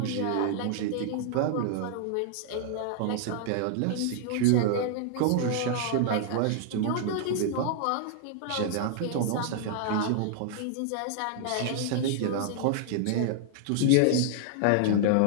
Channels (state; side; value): different; both; correlation -0.01